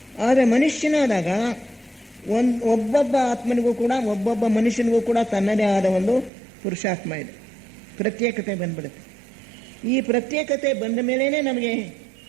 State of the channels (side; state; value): left; drops out; at 6.3 s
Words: ಆದರೆ ಮನುಷ್ಯನಾದಾಗ ಒಬ್ಬೊಬ್ಬ ಆತ್ಮನಿಗೂ ಕೂಡ, ಒಬ್ಬೊಬ್ಬ ಮನುಷ್ಯನಿಗೂ ಕೂಡ ತನ್ನದೇ ಆದ ಪುರುಷಾತ್ಮ ಇದೆ. ಪ್ರತ್ಯೇಕತೆ ಬಂದ್ಬಿಡುತ್ತೆ. ಈ ಪ್ರತ್ಯೇಕತೆ ಬಂದ ಮೇಲೇ ನಮಗೆ